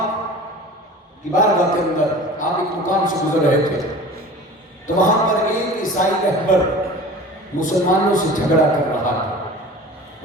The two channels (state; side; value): normal; both; correlation 0.39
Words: کی بارگاہ کے اندر آپ ایک مقام سے گزر رہے تھے تو وہاں پر ایک عیسائی رہبر مسلمانوں سے جھگڑا کر رہا تھا،